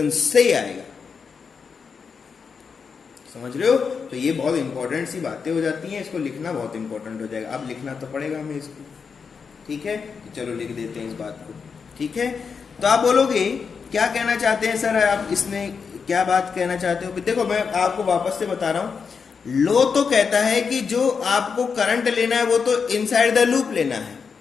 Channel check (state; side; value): quieter; right; 5.8 dB